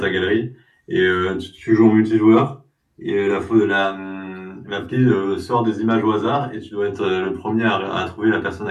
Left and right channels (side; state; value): both; identical; correlation 1.00